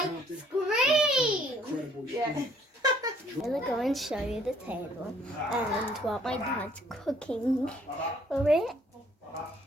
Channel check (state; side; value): normal; both; correlation 0.62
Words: scream! Incredible Yeah. experience. I'm gonna go and show you the table and what my dad's cooking for it.